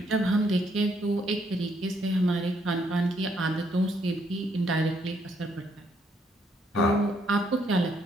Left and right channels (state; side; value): normal; both; correlation 0.72